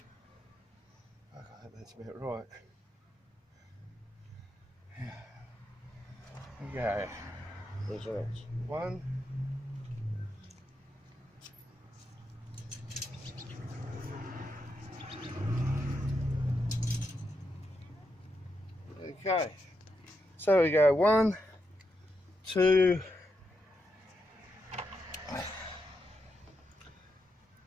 I think that's about right. Okay. Measurements. 1. Okay. So we go 1, 2,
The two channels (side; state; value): both; normal; correlation 0.84